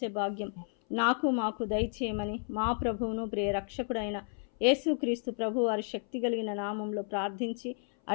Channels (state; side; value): silent; right; 56 dB below the other